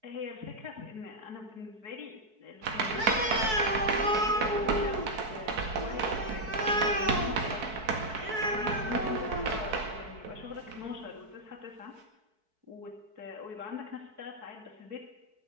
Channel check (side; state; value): left; late; 4.6 ms